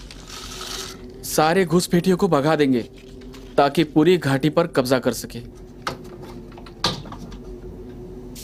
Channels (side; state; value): both; identical; correlation 1.00